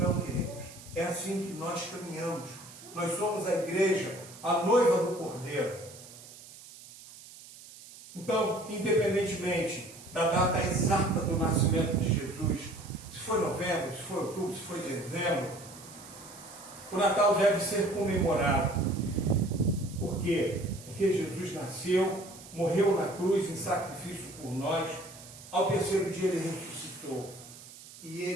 queridos, é assim que nós caminhamos. Nós somos a igreja, a noiva do Cordeiro. Então, independentemente da data exata do nascimento de Jesus, se foi novembro, se foi outubro, se foi dezembro, o Natal deve ser comemorado. Por quê? Porque Jesus nasceu, morreu na cruz em sacrifício por nós, ao terceiro dia ele ressuscitou. E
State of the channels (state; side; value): noise; right; hiss, 18 dB below the sound